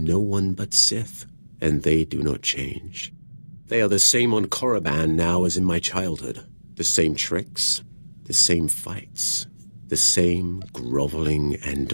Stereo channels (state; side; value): inverted; both; correlation -1.00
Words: one but Sith, and they do not change. They are the same on Korriban now as in my childhood. The same tricks, the same fights, the same groveling